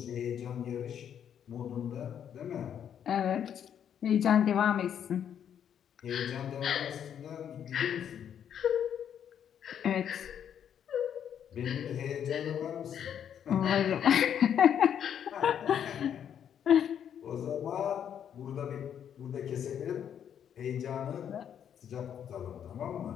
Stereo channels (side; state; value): right; quieter; 8.9 dB